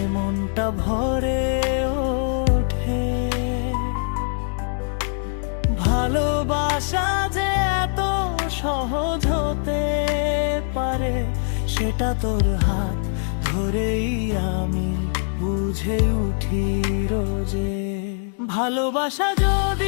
মনটা ভরে ওঠে। ভালোবাসা যে এত সহজ হতে পারে, সেটা তোর হাত ধরেই আমি বুঝে উঠি রোজে। ভালোবাসা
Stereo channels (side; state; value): right; silent; digital silence